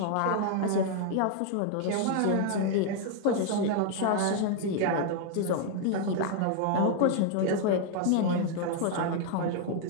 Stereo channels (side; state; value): both; different; correlation 0.00